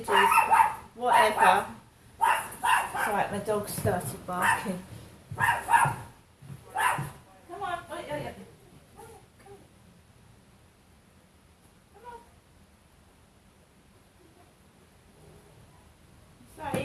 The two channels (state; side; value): identical; both; correlation 1.00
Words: whatever. Right, my dog started barking. Come on, come on. So